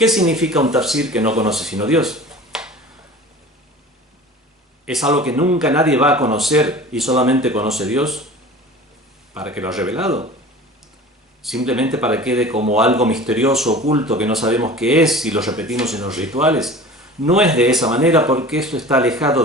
significa un tafsir que no conoce sino Dios? ¿Es algo que nunca nadie va a conocer y solamente conoce Dios? ¿Para que lo ha revelado? ¿Simplemente para que quede como algo misterioso, oculto, que no sabemos qué es y lo repetimos en los rituales? No es de esa manera, porque esto está alejado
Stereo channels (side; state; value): both; normal; correlation 0.40